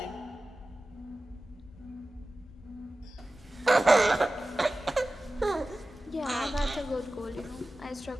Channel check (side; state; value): both; normal; correlation 0.96